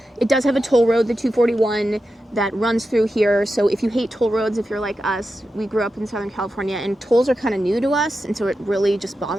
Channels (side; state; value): both; normal; correlation 0.90